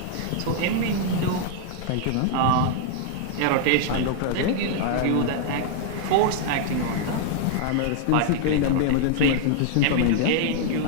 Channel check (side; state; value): both; different; correlation 0.00